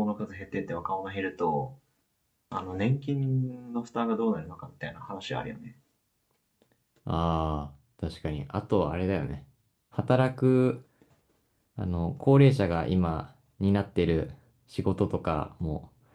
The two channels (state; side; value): identical; both; correlation 1.00